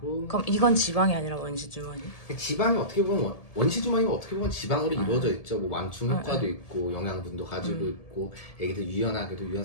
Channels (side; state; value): right; late; 1.7 ms